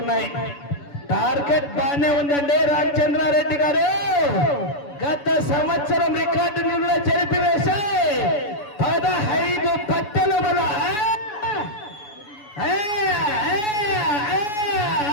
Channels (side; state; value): right; late; 7.0 ms